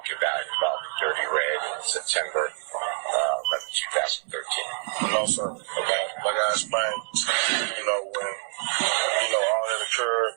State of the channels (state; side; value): silent; left; 61 dB below the other